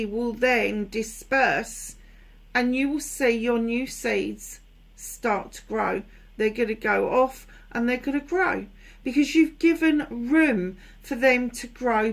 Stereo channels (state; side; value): identical; both; correlation 1.00